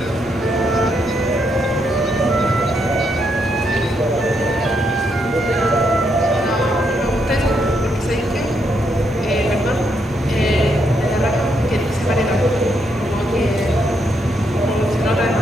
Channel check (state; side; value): normal; both; correlation 0.77